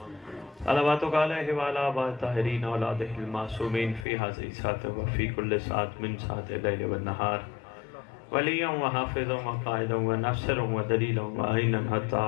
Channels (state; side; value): drops out; right; at 4.0 s